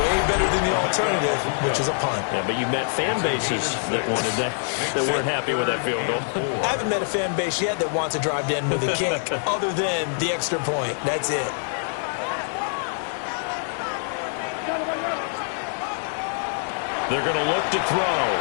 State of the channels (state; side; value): silent; right; digital silence